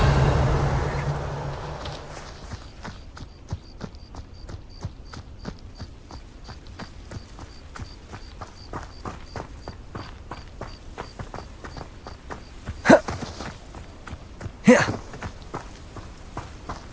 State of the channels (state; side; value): identical; both; correlation 1.00